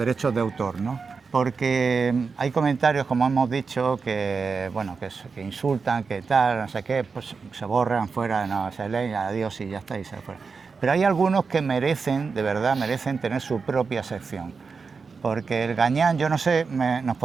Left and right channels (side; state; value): left; quieter; 5.0 dB